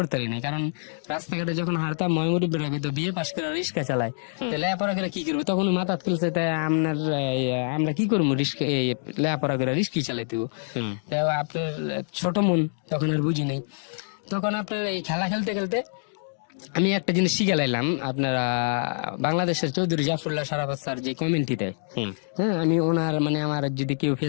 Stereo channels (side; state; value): right; silent; digital silence